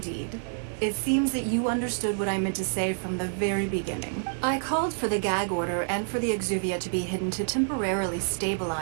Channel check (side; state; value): left; silent; digital silence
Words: It seems that you understood what I meant to say from the very beginning. I called for the gag order and for the Exuvia to be hidden to temporarily